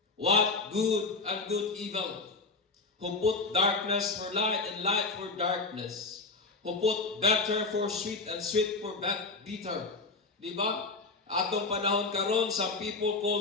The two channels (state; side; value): quieter; right; 3.8 dB